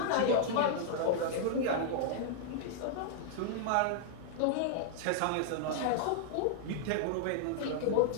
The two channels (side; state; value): both; different; correlation -0.01